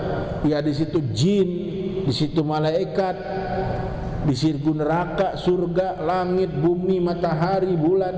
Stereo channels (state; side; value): identical; both; correlation 1.00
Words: ya di situ jin, di situ malaikat, di situ neraka, surga, langit, bumi, matahari, bulan.